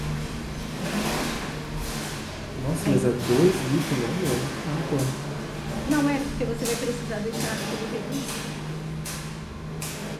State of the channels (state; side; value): identical; both; correlation 1.00